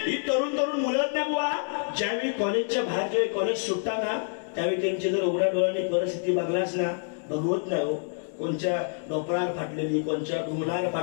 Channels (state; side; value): silent; right; 60 dB below the other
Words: ही तरुण मुलं ना बुवा, ज्यावेळी कॉलेजच्या बाहेर जेव्हा कॉलेज सुटताना, त्यावेळी त्यांची जर उघड्या डोळ्याने परिस्थिती बघलास ना, भगवत नाही हो. कोणच्या डोपरार फाटलेली, कोणच्या ढुंगणाला